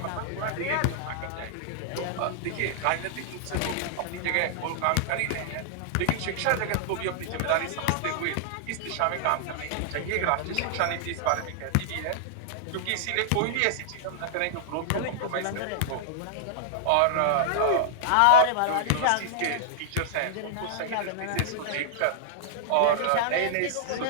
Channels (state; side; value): different; both; correlation -0.01